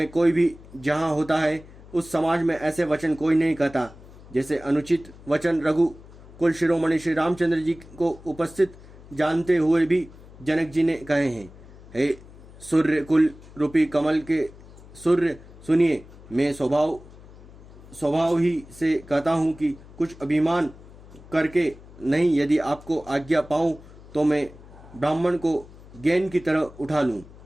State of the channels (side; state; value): left; noise; hum, 20 dB below the sound